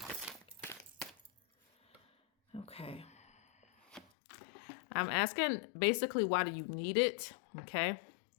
Okay. I'm asking basically, why do you need it? Okay.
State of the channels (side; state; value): right; drops out; at 4.0 s